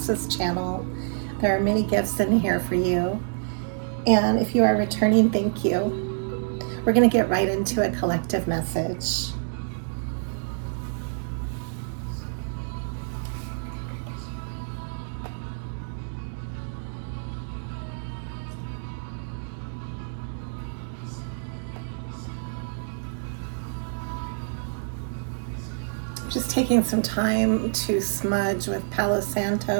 this channel. There are many gifts in here for you. And if you are returning, thank you. We're going to get right into a collective message. Just taking some time to smudge with Palo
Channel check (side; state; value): left; silent; digital silence